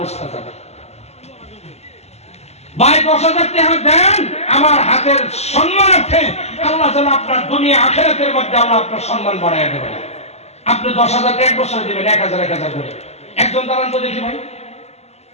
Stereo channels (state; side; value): late; right; 0.31 ms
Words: যাবে। ভাই 10,000 টাকা দেন আমার হাতের সম্মানার্থে, আল্লাহ যেন আপনার দুনিয়া আখিরাতের মধ্যে আল্লাহ আপনার সম্মান বাড়াইয়া দেবেন। আপনি 10,000 এক বছরে দিবেন 1,000 করে। একজন দাঁড়ান তো দেখি ভাই,